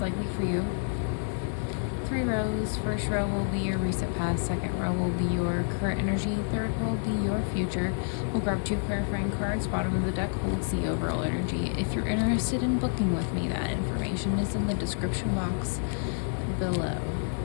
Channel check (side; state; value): right; silent; 59 dB below the other